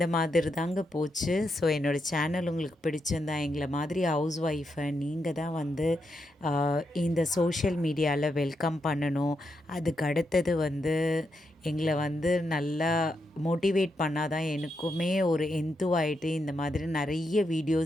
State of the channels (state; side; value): normal; both; correlation 0.83